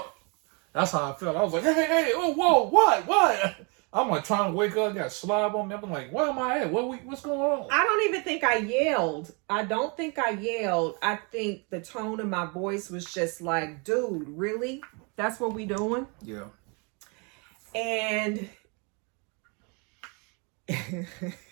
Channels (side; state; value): left; quieter; 33.2 dB